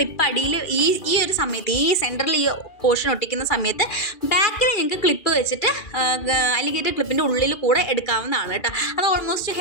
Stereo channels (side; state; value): right; late; 2.4 ms